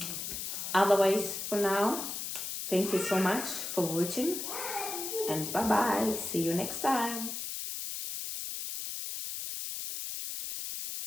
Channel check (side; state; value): left; noise; hiss, 5 dB below the sound